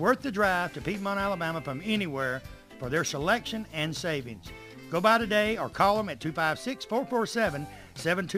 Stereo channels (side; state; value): both; identical; correlation 1.00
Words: the drive to Piedmont, Alabama from anywhere for their selection and savings. Go by today or call them at